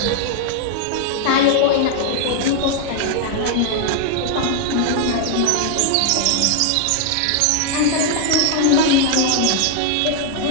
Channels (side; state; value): both; different; correlation 0.00